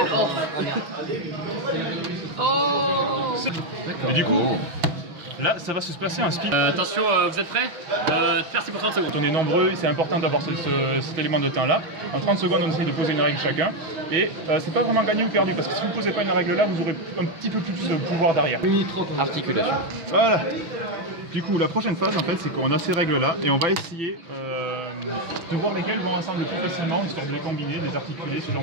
Oh. Et du coup, là, ça va se passer un speed. Attention, vous êtes prêts? Faire pour 30 secondes. On est nombreux, c'est important d'avoir cet élément de temps là. En 30 secondes, on essaye de poser une règle chacun. Et c'est pas vraiment gagné ou perdu, parce que si vous ne posez pas une règle là, vous aurez un petit peu plus de pouvoir derrière. Articulation. Voilà. Du coup, la prochaine phase, en fait, c'est qu'on a ces règles-là et on va essayer de voir lesquelles vont ensemble le plus facilement, histoire de les combiner, de les articuler, ce genre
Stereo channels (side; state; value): left; late; 6.1 ms